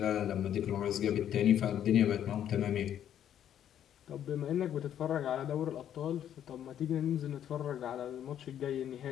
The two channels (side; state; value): right; quieter; 10.2 dB